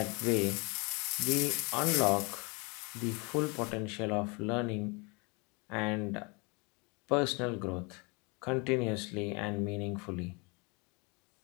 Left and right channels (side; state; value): right; quieter; 30.1 dB